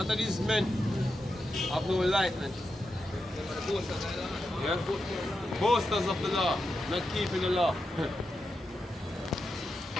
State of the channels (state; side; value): normal; both; correlation 0.87